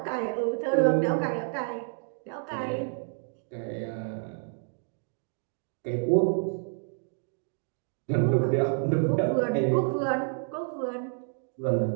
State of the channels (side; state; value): left; silent; 58 dB below the other